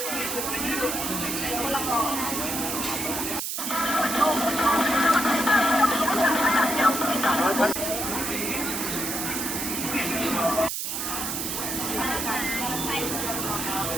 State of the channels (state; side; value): noise; right; hiss, 3 dB below the sound